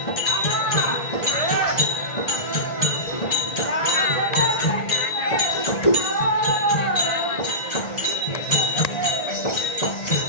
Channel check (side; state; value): right; late; 1.5 ms